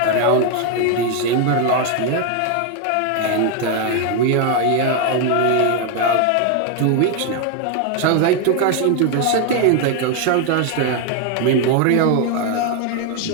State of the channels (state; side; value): different; both; correlation 0.01